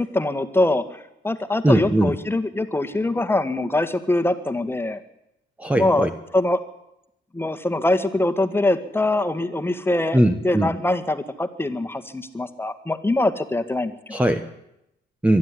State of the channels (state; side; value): normal; both; correlation 0.87